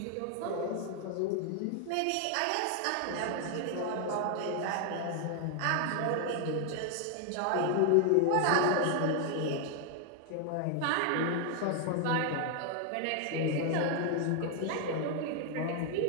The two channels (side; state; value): both; different; correlation 0.00